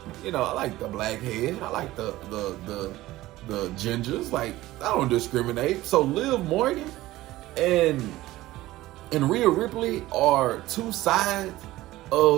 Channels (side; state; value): left; quieter; 16.9 dB